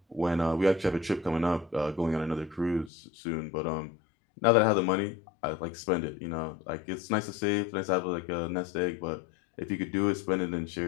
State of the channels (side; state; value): right; drops out; at 2.9 s